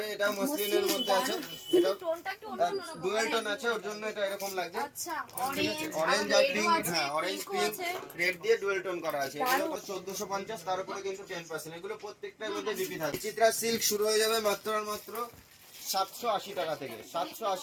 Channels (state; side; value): identical; both; correlation 1.00